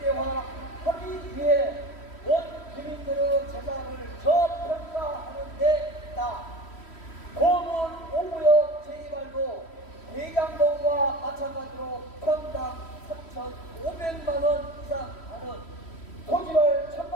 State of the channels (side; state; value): right; late; 3.1 ms